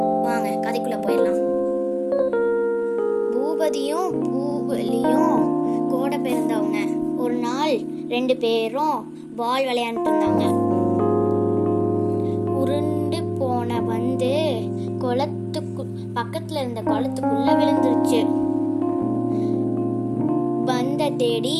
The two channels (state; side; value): identical; both; correlation 1.00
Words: வாங்க கதைக்குள்ளே போயிடலாம். பூபதியும் பூவிலியும் கூட பிறந்தவங்க. ஒரு நாள் 2 பேரும் பால் விளையாண்டுட்டு இருந்தாங்க. உருண்டு போன வந்து பக்கத்துல இருந்த குளத்துக்குள்ள விழுந்துருச்சு. பந்த தேடி